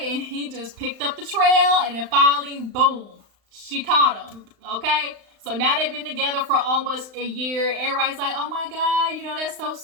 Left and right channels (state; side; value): late; left; 35 ms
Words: And he just picked up the trail, and then finally, boom, she caught him, okay? So now they've been together for almost a year. Everybody's like, oh my God, that's so